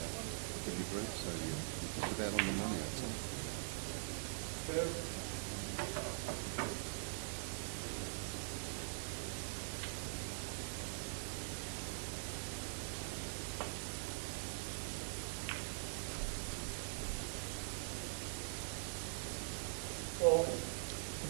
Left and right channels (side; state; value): left; silent; digital silence